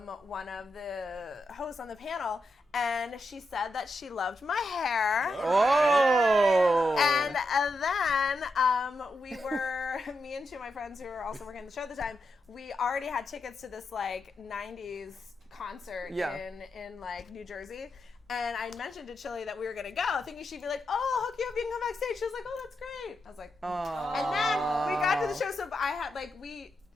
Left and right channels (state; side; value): normal; both; correlation 0.85